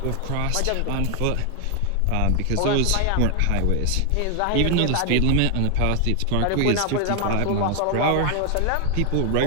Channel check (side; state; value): both; different; correlation 0.00